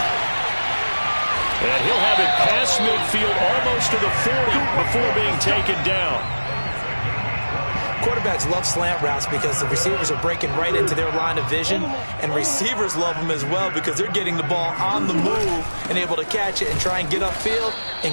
And he'll have it past midfield almost to the 40 before being taken down. Quarterbacks love slant routes because the receivers are breaking right into their line of vision, and receivers love them as well because they're getting the ball on the move and able to catch it and try and get upfield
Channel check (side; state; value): both; inverted; correlation -1.00